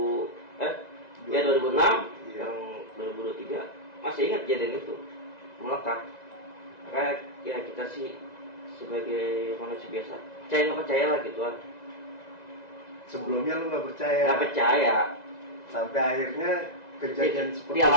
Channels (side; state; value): right; late; 1.9 ms